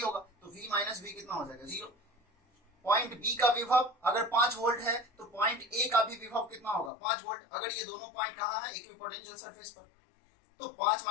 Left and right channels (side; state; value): right; drops out; at 6.9 s